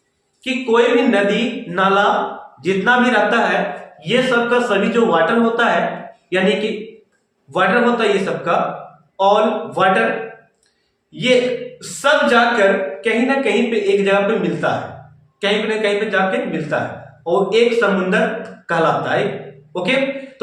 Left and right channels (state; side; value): identical; both; correlation 1.00